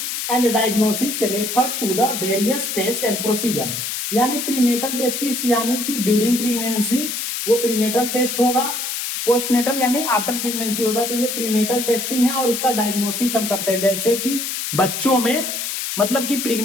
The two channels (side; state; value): left; noise; hiss, 3 dB below the sound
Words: and diagnosis refer to the various test and procedure. यानी प्रीनेटल टेस्ट यानी कि ड्यूरिंग प्रेगनेंसी वो प्रीनेटल टेस्ट होगा, पोस्टनेटल यानी आफ्टर प्रेगनेंसी होगा। तो ये प्रीनेटल टेस्टिंग है और उसका डायग्नोसिस हम करते हैं। जैसे कि बच्चों में मतलब कि